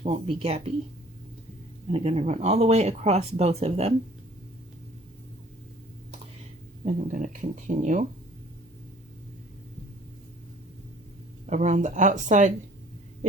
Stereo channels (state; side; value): normal; both; correlation 0.53